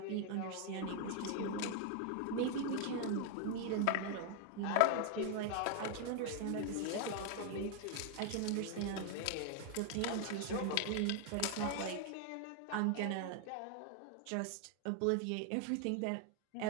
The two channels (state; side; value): different; both; correlation 0.00